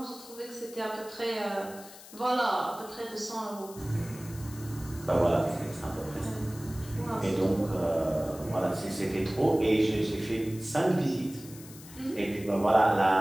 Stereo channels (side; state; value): left; noise; hiss, 18 dB below the sound